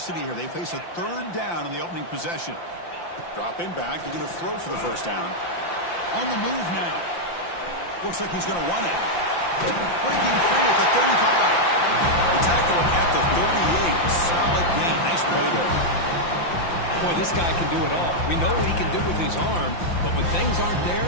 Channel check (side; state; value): right; late; 5.8 ms